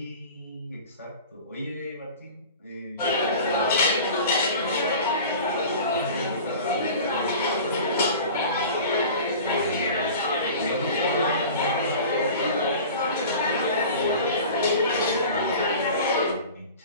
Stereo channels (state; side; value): inverted; both; correlation -0.39